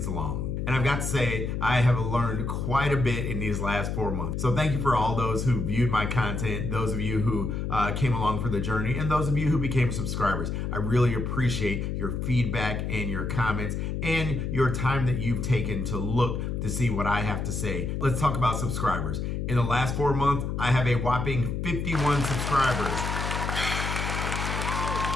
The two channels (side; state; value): left; noise; hum, 2 dB below the sound